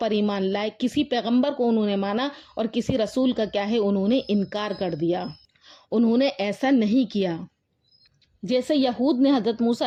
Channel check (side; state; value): both; identical; correlation 1.00